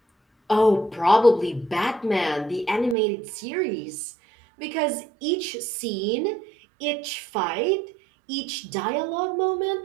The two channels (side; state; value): left; drops out; at 3.0 s